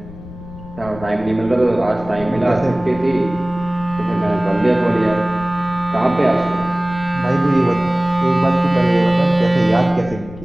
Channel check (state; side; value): noise; left; rumble, 15 dB below the sound